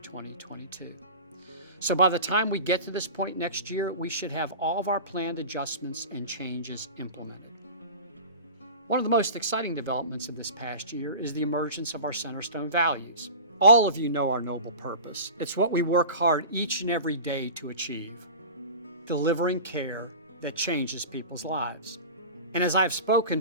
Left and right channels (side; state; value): both; inverted; correlation -0.34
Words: 2022. So by the time we get to this point next year, we should have all of our planned adjustments and changes implemented. One of the most exciting developments of this past year is the emergence of our Centerstone values. All of you know our noble purpose. It's what we work hard each and every day to achieve: delivering care that changes people's lives. And as I've